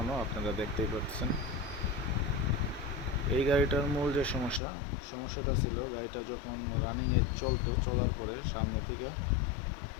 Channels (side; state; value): right; drops out; at 4.6 s